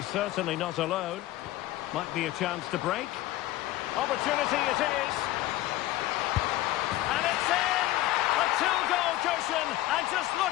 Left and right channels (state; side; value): quieter; right; 15.8 dB